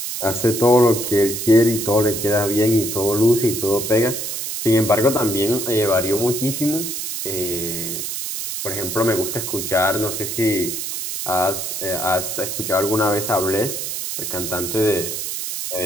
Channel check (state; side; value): noise; right; hiss, 4 dB below the sound